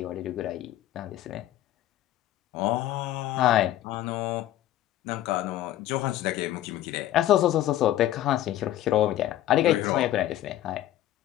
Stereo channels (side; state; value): right; quieter; 13.4 dB